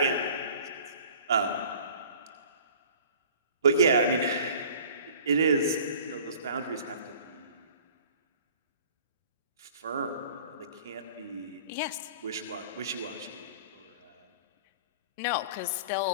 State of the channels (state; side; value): inverted; both; correlation -0.47